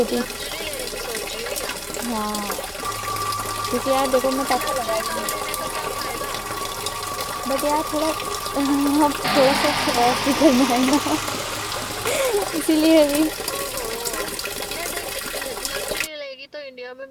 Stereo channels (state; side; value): identical; both; correlation 1.00